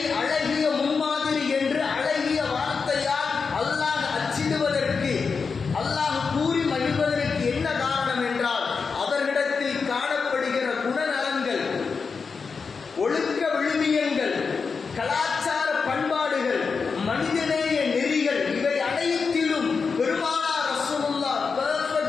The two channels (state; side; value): quieter; right; 5.2 dB